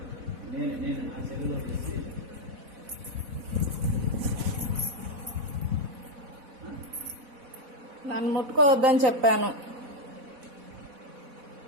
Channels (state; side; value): late; left; 4.1 ms